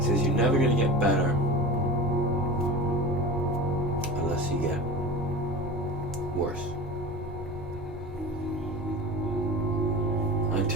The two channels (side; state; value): both; normal; correlation 0.32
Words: you're never going to get better unless you get worse. I